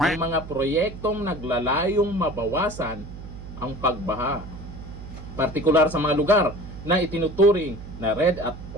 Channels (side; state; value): right; noise; hum, 13 dB below the sound